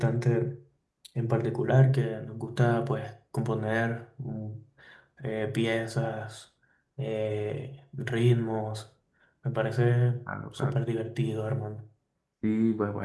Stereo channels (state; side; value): identical; both; correlation 1.00